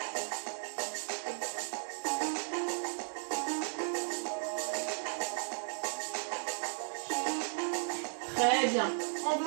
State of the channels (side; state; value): left; silent; digital silence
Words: Très bien. On